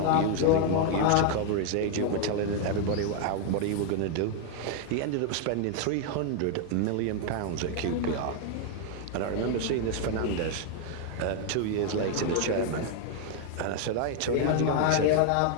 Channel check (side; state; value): both; different; correlation 0.00